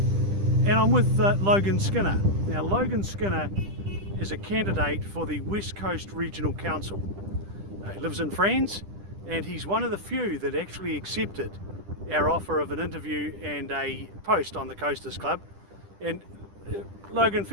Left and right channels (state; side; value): late; left; 10 ms